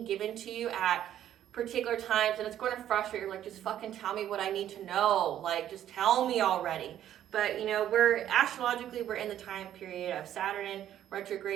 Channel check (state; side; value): quieter; left; 11.3 dB